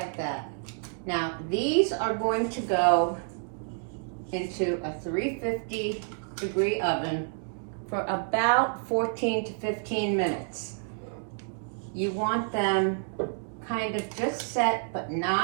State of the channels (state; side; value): silent; left; 59 dB below the other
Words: that. Now, these are going to go into a 350 degree oven for about 14 to 15 minutes. You want them kind of just set, but